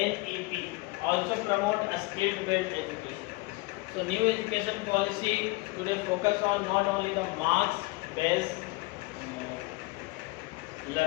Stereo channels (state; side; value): quieter; right; 23.3 dB